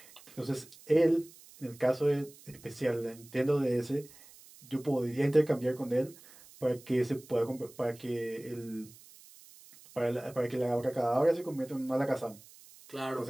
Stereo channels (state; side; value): noise; right; hiss, 22 dB below the sound